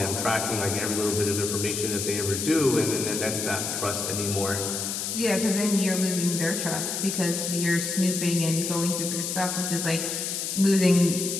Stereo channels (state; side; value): noise; left; hiss, 3 dB below the sound